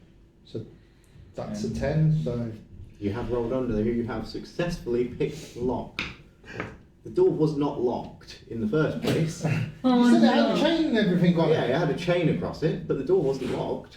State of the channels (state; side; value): identical; both; correlation 1.00